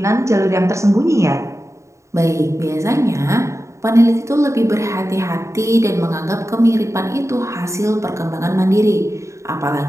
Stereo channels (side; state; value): left; late; 0.14 ms